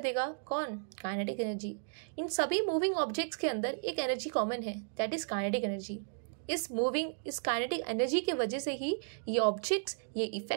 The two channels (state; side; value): silent; left; digital silence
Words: कौन? Kinetic energy. इन सभी मूविंग ऑब्जेक्ट्स के अंदर एक एनर्जी कॉमन है, दैट इज काइनेटिक एनर्जी। इस काइनेटिक एनर्जी की वजह से ही ये ऑब्जेक्ट्स ये